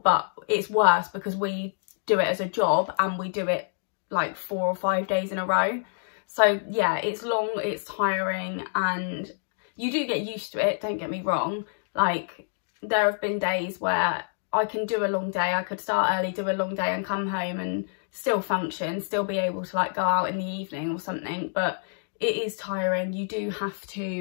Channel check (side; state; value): right; silent; digital silence